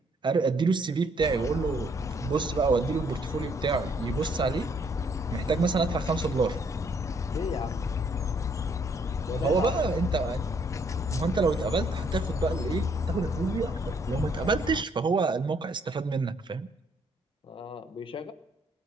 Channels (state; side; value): normal; both; correlation 0.67